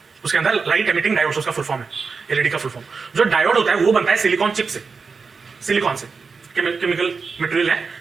उसके अंदर लाइट एमिटिंग डायोड्स उसका फुल फॉर्म है, एलईडी का फुल फॉर्म। जो डायोड होता है वो बनता है सिलिकॉन चिप से, सिलिकॉन से, केमिकल मटेरियल है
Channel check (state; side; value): quieter; left; 4.9 dB